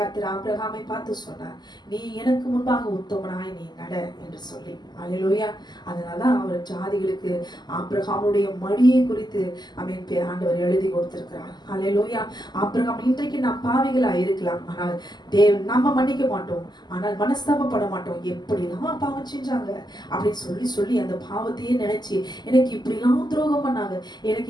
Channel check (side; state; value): right; late; 0.21 ms